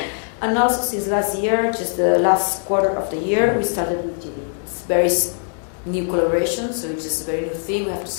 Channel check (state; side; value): silent; right; 60 dB below the other